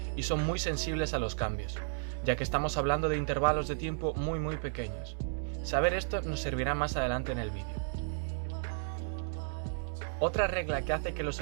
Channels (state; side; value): silent; left; digital silence